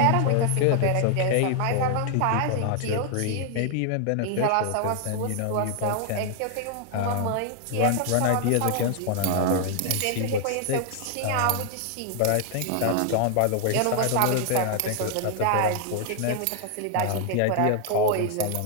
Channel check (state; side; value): different; both; correlation 0.00